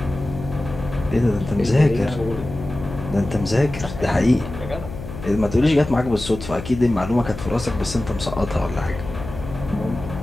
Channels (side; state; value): left; noise; hum, 10 dB below the sound